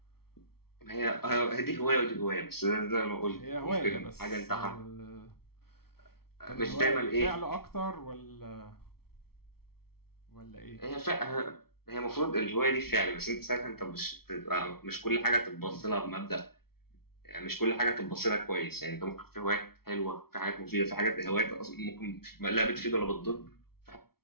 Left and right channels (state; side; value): late; right; 0.95 ms